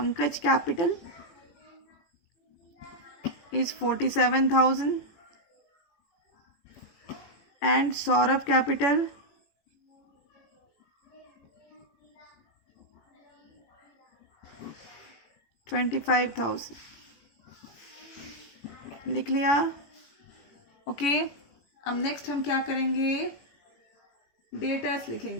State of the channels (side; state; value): right; late; 18 ms